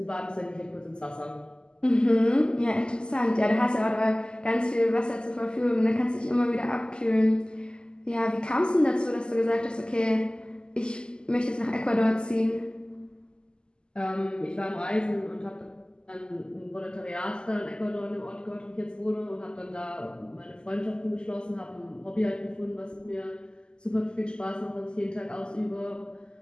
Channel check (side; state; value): right; late; 0.047 ms